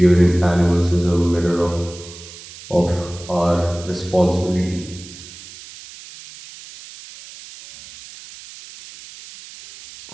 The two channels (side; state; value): right; noise; hiss, 17 dB below the sound